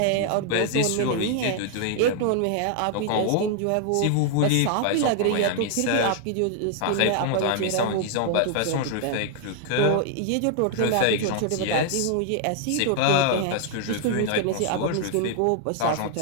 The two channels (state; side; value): different; both; correlation 0.00